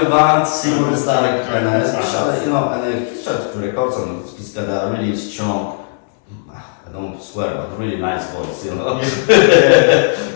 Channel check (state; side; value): silent; right; 69 dB below the other